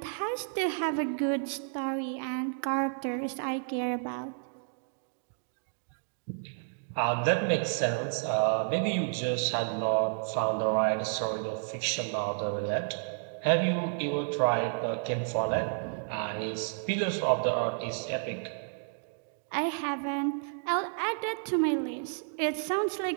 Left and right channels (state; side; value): silent; left; digital silence